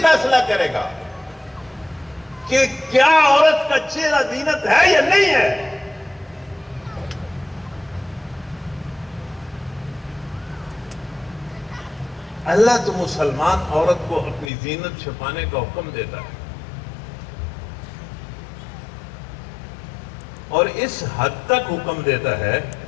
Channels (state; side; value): drops out; right; at 14.5 s